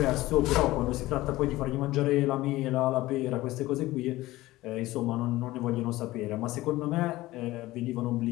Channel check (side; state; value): right; quieter; 17.8 dB